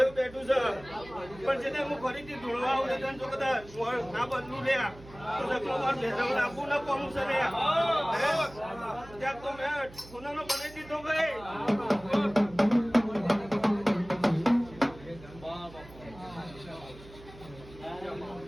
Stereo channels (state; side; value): noise; right; hum, 19 dB below the sound